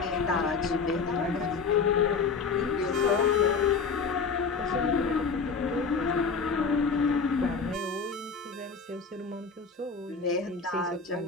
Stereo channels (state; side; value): quieter; right; 5.1 dB